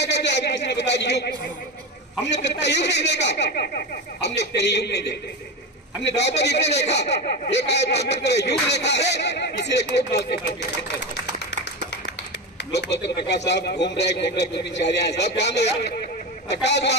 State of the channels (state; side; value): normal; both; correlation 0.20